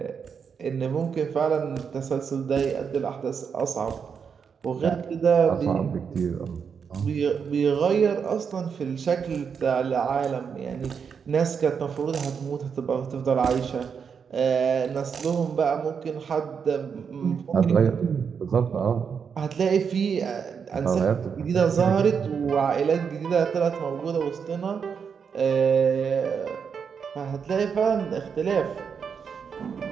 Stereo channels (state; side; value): quieter; left; 6.5 dB